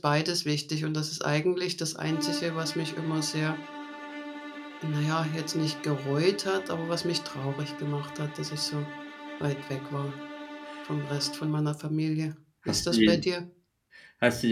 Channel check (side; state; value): both; identical; correlation 1.00